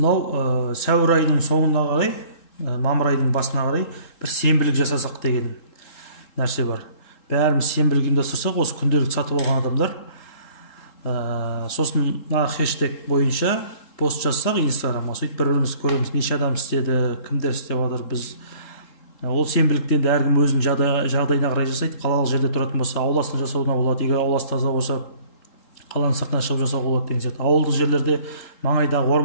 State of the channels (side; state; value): right; late; 3.7 ms